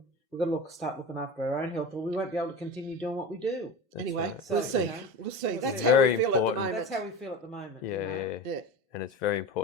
we've got to start looking after our own health, or we won't be able to continue doing what we do. Anyway, right. we'll So, see. you know, We'll see. It's That's how very we feel important. at the moment. That's how we feel at the moment. Yeah, you know. Yeah. And it's very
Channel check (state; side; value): normal; both; correlation 0.29